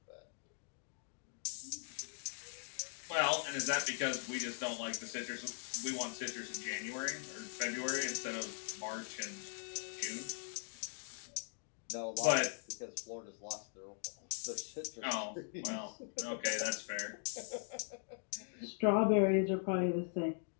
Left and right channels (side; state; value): right; silent; digital silence